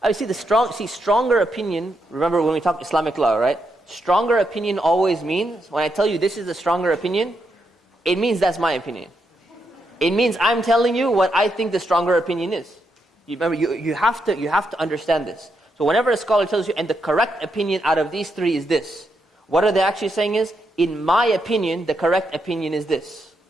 I see stronger opinion, remember when we talk Islamic law, right? Stronger opinion always means, when I tell you this is a stronger opinion, it means that's my opinion. It means I'm telling you what I think the stronger opinion is. Remember, you have to understand this. So whenever a scholar tells you, and the correct opinion out of these three is this, what are they actually saying is, in my opinion, the correct opinion is this.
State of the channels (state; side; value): normal; both; correlation 0.81